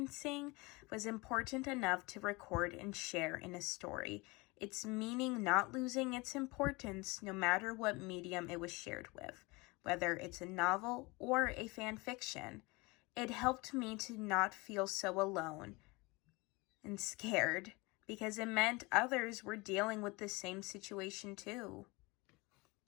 was important enough to record and share in a story, its meaning not losing its importance no matter what medium it was shared with, whether it's a novel or a fan fiction. It helped me to not feel so alone and scared because it meant others were dealing with the same situation too.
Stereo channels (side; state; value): right; quieter; 25.0 dB